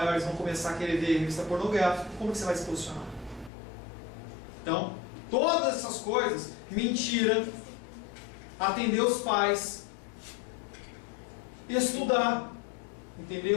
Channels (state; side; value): drops out; right; at 3.5 s